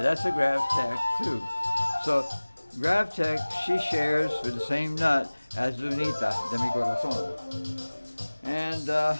a GravTech too. So GravTech, she shares with the same nut as Lunita de mi Corazón. And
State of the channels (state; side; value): inverted; both; correlation -1.00